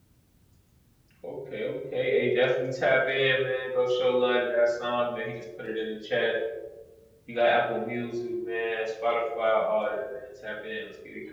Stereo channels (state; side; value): identical; both; correlation 1.00